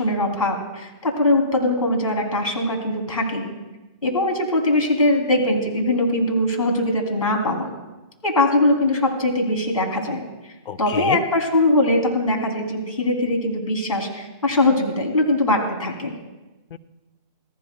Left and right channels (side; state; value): both; inverted; correlation -0.42